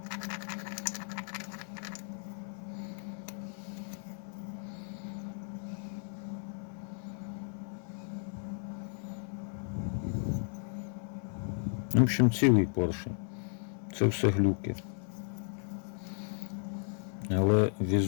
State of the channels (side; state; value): right; silent; 55 dB below the other